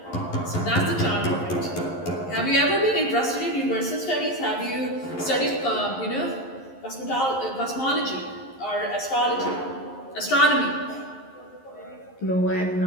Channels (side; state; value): right; late; 11 ms